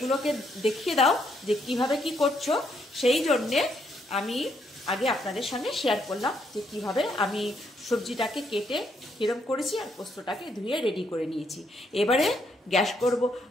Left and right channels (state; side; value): normal; both; correlation 0.74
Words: দেখিয়ে দাও যে কিভাবে কি করছো। সেই জন্যে আমি আগে আপনাদের সঙ্গে শেয়ার করলাম যে কিভাবে আমি সবজিটাকে কেটে কিরম করেছি আর পোস্তটাকে ধুয়ে রেডি করে নিয়েছি। এবারে